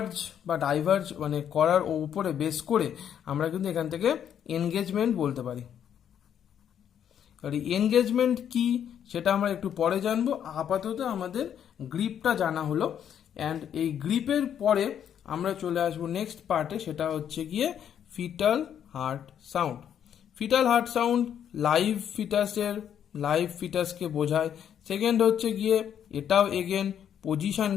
বা ডাইভার্জ মানে করার উপরে বেস করে আমরা কিন্তু এখান থেকে এনগেজমেন্ট বলতে পারি। আর এনগেজমেন্ট কি সেটা আমরা একটু পরে জানবো, আপাতত আমাদের গ্রিপটা জানা হলো। অ্যান্ড এই গ্রিপের পরে আমরা চলে আসবো নেক্সট পার্টে, সেটা হচ্ছে গিয়ে fetal heart sound. Fetal heart sound live ফিটাসকে বোঝায়। সেকেন্ড হচ্ছে গিয়ে এটাও এগেন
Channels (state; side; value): quieter; right; 9.2 dB